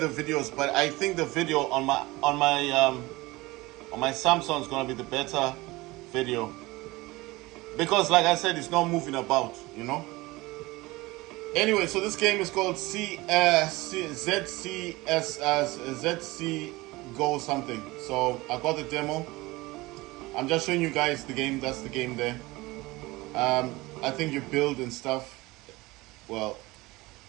videos. But I think the video on my Samsung is gonna be the better video because, like I said, it's not moving about, you know. Anyway, so this game is called ZC Go something. So I got the demo. I'm just showing you guys the game. That's the game there. I think you build and stuff. Well,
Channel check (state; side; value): quieter; left; 21.0 dB